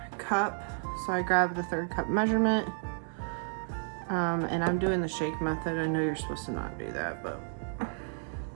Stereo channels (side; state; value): left; silent; 56 dB below the other